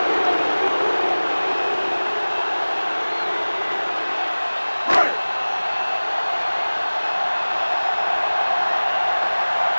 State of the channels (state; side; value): inverted; both; correlation -1.00